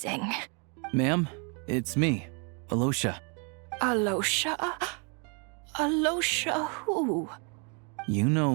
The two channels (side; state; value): left; quieter; 36.3 dB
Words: Ma'am, it's me, Alosha. Alosha? Alosha who? You